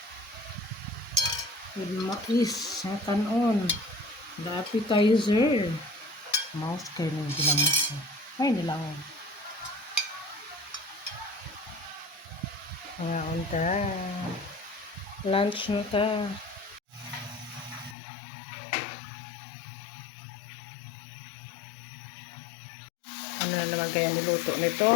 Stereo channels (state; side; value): drops out; right; at 17.9 s